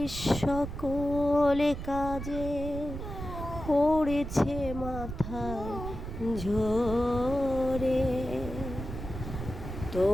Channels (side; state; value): right; noise; rumble, 8 dB below the sound